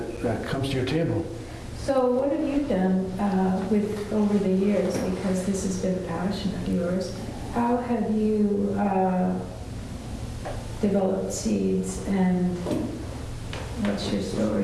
comes to your table. So what have you done over the years, because this has been a passion of yours? How have you developed seeds, and what's your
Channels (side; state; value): both; identical; correlation 1.00